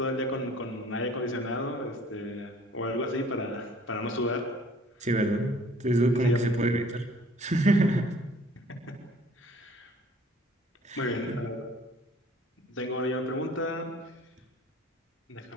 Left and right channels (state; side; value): normal; both; correlation 0.54